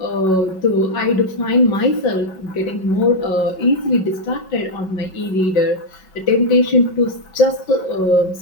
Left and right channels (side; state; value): right; late; 5.3 ms